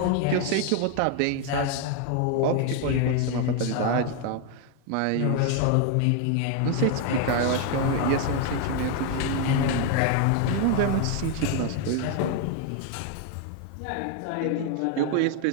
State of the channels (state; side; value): different; both; correlation 0.01